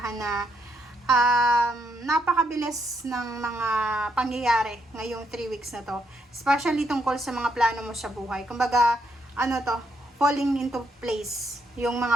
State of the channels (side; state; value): both; normal; correlation 0.76